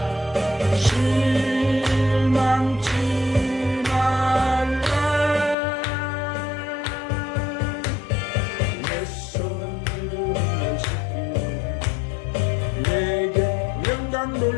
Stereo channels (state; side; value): drops out; right; at 5.6 s